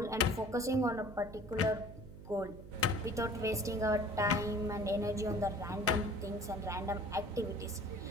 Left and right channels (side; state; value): right; noise; hum, 14 dB below the sound